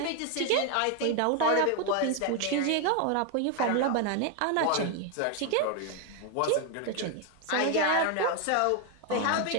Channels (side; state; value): both; different; correlation 0.01